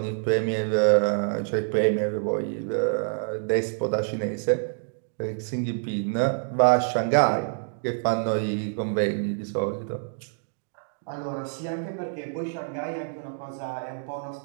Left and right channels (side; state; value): left; silent; digital silence